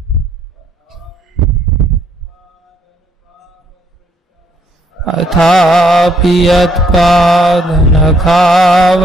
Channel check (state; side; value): normal; both; correlation 0.69